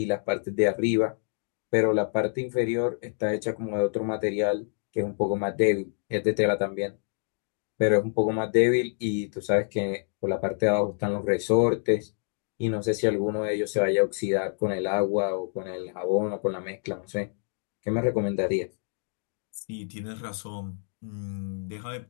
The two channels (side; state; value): right; silent; digital silence